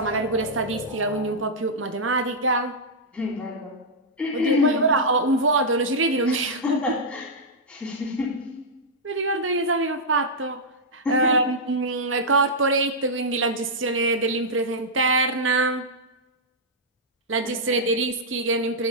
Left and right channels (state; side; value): normal; both; correlation -0.09